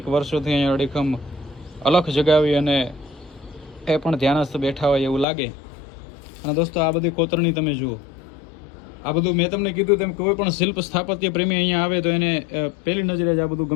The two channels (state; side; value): drops out; right; at 5.2 s